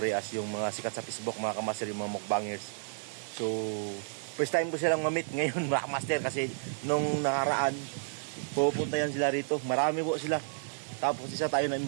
yung mga sikat sa Facebook, mga kamaster, yung mga mukbangers. So, first time ko silang mamit ngayon mga kamaster kasi nung nakaraan, pupunta yan sila rito. Marami po sila. Tapos isa tayo na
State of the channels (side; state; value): left; silent; digital silence